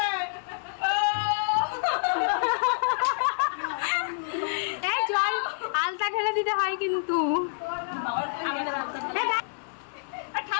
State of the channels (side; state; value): right; silent; 60 dB below the other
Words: জল আলতা ঢেলে দিতে হয় কিন্তু